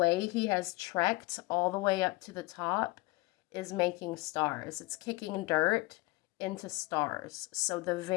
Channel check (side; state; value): right; quieter; 22.3 dB